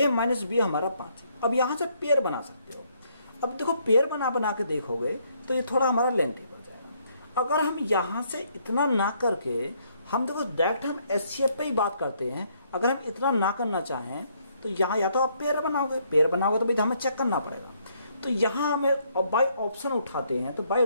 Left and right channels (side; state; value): both; inverted; correlation -0.70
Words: माइनस बी हमारा 5, अब यहाँ से पेयर बना सकते हो। अब देखो पेयर बना के देखोगे तो ये थोड़ा हमारा लेंथी बढ़ जाएगा। अगर हम यहाँ से इतना ना करके हम देखो डायरेक्ट हम एचसीएफ पे ही बात करते हैं, अगर हम इतना ना करना चाहें तो यहाँ या तो आप पेयर बनाओगे तो भाई हमें चेक करना पड़ेगा। तो यहाँ हमें बाई ऑप्शन उठाते हैं, तो बाई